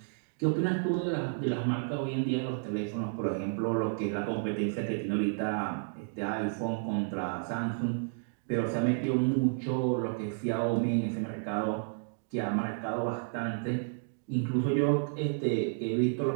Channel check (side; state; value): left; silent; digital silence